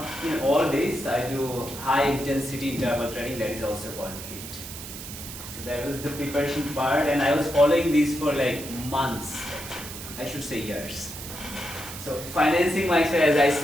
in all days, I do high intensity interval training, that is also called HIIT. So that was the preparation part, and I was following this for like months, I should say years. So financing myself, as I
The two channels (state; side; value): noise; right; hiss, 11 dB below the sound